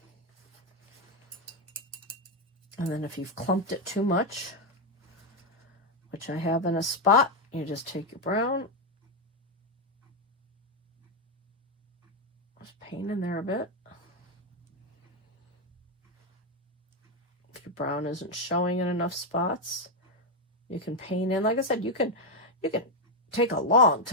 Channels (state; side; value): normal; both; correlation 0.03